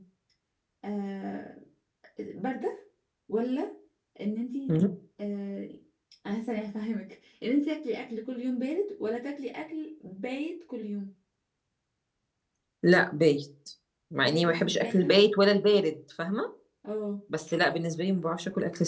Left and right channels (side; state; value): both; identical; correlation 1.00